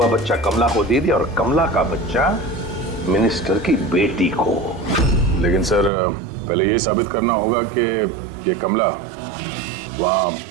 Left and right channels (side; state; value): left; drops out; at 5.9 s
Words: बच्चा कमला को दे दिया और कमला का बच्चा मिनिस्टर की बेटी को। लेकिन सर पहले ये साबित करना होगा कि ये कमला वहाँ